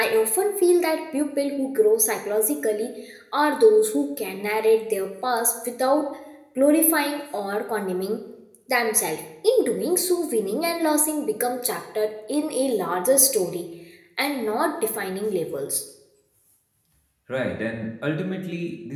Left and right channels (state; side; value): identical; both; correlation 1.00